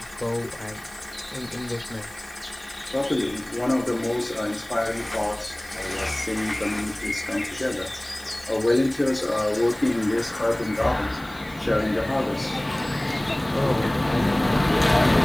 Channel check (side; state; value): right; noise; hiss, 23 dB below the sound